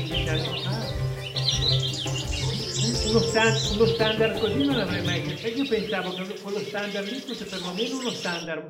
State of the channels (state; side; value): identical; both; correlation 1.00